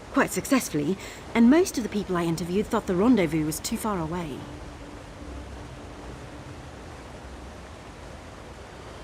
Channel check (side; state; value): both; identical; correlation 1.00